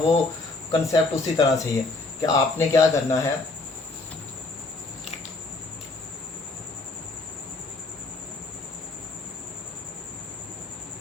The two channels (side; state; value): right; quieter; 3.3 dB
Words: कंसेप्ट उसी तरह से ही है कि आपने क्या करना है,